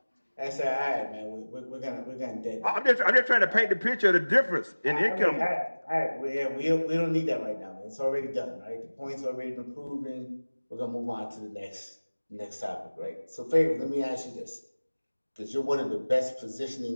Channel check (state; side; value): inverted; both; correlation -1.00